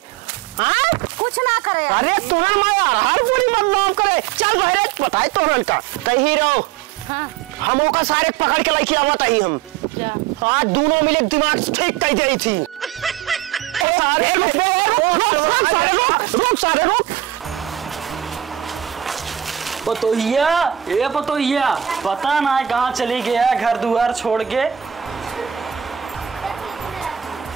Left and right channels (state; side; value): quieter; left; 11.1 dB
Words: हाँ कुछ ना करे। अरे तोहर माया हर पूरी बदनाम करे। चल बहरे बताए तोहरन का कहीं रहो। हाँ हमों का सारे पकड़ के लेके आवत ही हम। क्या आज दोनों मिले दिमाग ठीक कर गई थी। सारे रुक सारे रुक। पतोहिया ए पतोहिया, पता ना कहाँ चली गया घर दुआर छोड़ के।